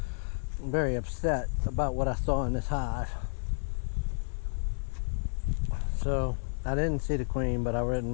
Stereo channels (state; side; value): silent; right; digital silence